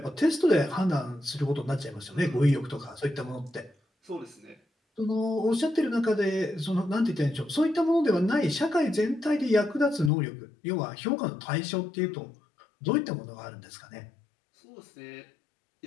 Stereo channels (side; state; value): right; drops out; at 10.1 s